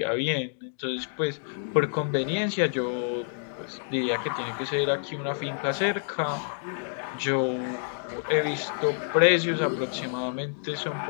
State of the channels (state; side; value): silent; right; digital silence